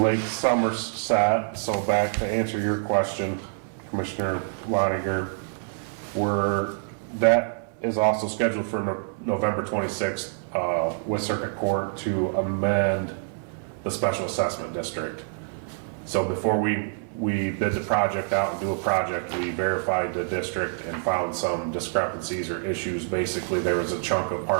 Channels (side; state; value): left; silent; 61 dB below the other